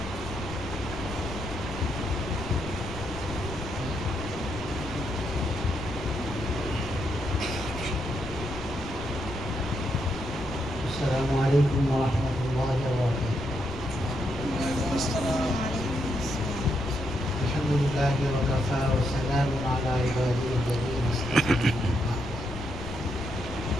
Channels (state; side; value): noise; left; rumble, 9 dB below the sound